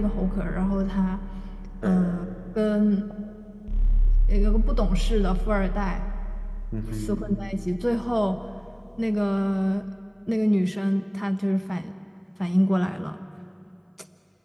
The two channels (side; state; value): both; identical; correlation 1.00